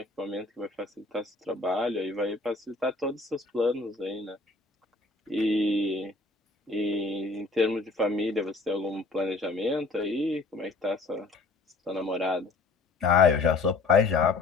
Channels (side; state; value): right; quieter; 3.5 dB